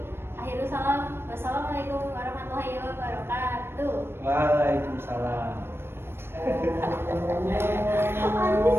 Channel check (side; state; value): left; late; 0.11 ms